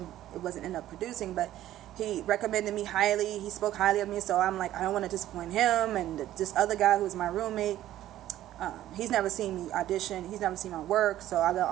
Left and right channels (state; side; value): quieter; left; 13.4 dB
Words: wasn't end up producing, but he recommended me highly. He spoke highly of me, so I'm like, I don't want to disappoint him. And this other guy who's my roommate, he's never seen me audition. He's never seen my work, so I